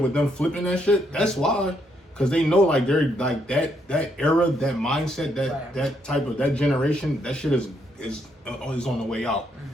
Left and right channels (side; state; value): both; normal; correlation 0.75